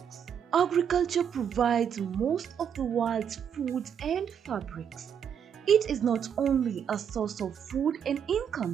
Agriculture provides most of the world's food and fabrics. It is not only a source of food and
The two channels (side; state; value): left; quieter; 8.1 dB